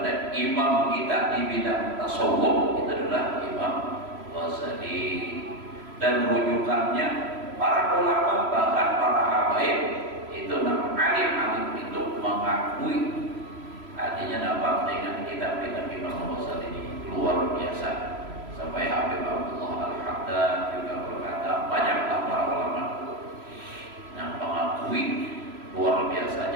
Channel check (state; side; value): late; left; 3.0 ms